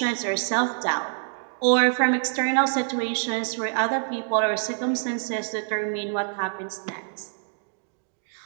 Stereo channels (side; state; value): left; silent; digital silence